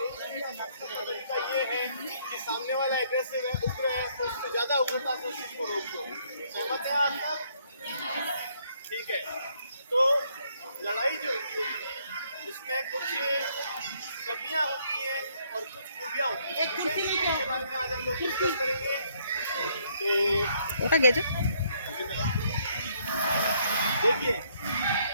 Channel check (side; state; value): both; inverted; correlation -0.68